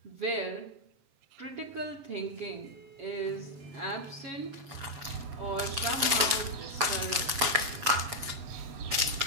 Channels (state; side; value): late; left; 7.8 ms